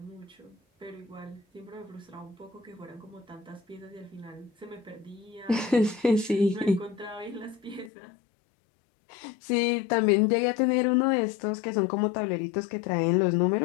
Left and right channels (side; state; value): right; drops out; at 7.9 s